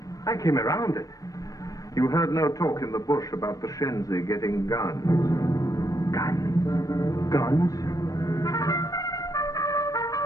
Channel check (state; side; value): late; right; 0.17 ms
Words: I came around it. You heard no talk in the bush about the Shenzi getting guns. Guns? Guns?